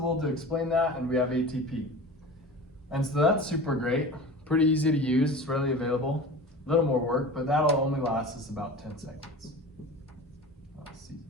to explain that, and we have ATP. And so that's super great, pretty easy to use, it's readily available. A little more work, but that'll only last us about 10 seconds. Let's see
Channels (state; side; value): normal; both; correlation 0.35